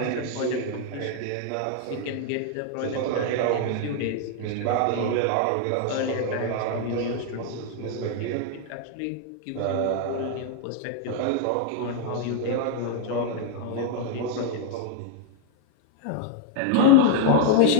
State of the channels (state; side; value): different; both; correlation -0.01